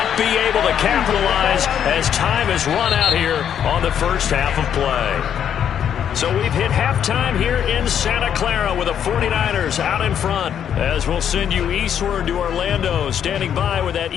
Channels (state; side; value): quieter; right; 9.0 dB